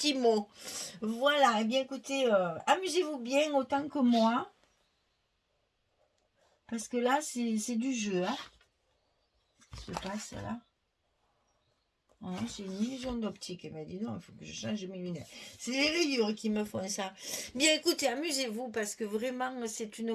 mots. Voilà, et bien écoutez, amusez-vous bien autant que moi. Parce que là, c'est du jeu. Hein. Je passe là. Oh, c'est une illusion d'optique. Elle m'a dit non, il faut que je change mes lunettes. C'est les rayures qui me font ça. Bien écoutez, amusez-vous parce que vraiment c'est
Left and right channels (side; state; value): both; identical; correlation 1.00